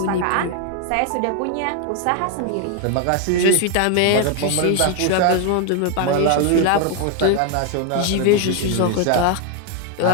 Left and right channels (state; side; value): different; both; correlation 0.01